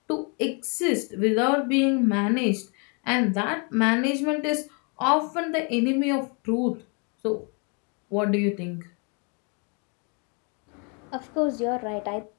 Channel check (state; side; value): quieter; right; 35.5 dB